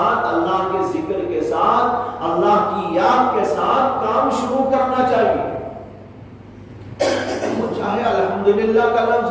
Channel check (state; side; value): identical; both; correlation 1.00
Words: اللہ کے ذکر کے ساتھ، اللہ کی یاد کے ساتھ کام شروع کرنا چاہیے. چاہے الحمدللہ کا لفظ